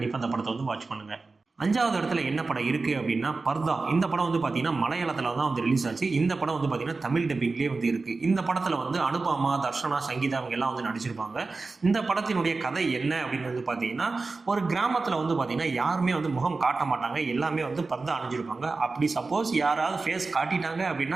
அந்த படத்தை வந்து வாட்ச் பண்ணுங்கள். 5வது இடத்துல என்ன படம் இருக்குது அப்படின்னா பர்தா. இந்த படம் வந்து பார்த்தீங்கன்னா மலையாளத்தில் தான் வந்து ரிலீஸ் ஆச்சு. இந்த படம் வந்து பார்த்தீங்கன்னா தமிழ் டப்பிங்லேயே வந்து இருக்குது. இந்த படத்தில் வந்து அனுபமா, தர்ஷனா, சங்கீதா அவங்க எல்லாம் வந்து நடிச்சிருப்பாங்க. இந்த படத்தினுடைய கதை என்ன அப்படின்னு வந்து பார்த்தீங்கன்னா ஒரு கிராமத்தில் வந்து பார்த்தீங்கன்னா யாருமே வந்து முகம் காட்ட மாட்டாங்க. எல்லாமே வந்து பர்தா அணிஞ்சிருப்பாங்க. அப்படி சப்போஸ் யாராவது ஃபேஸ் காட்டிட்டாங்க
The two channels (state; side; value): quieter; left; 3.8 dB